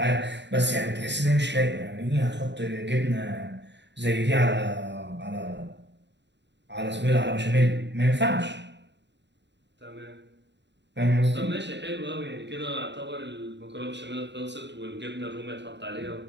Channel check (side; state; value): left; late; 0.51 ms